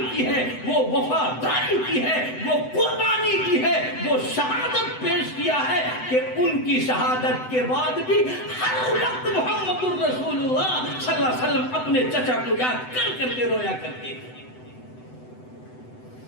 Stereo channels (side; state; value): right; late; 7.9 ms